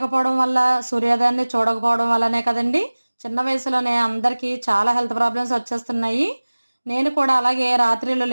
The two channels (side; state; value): both; inverted; correlation -1.00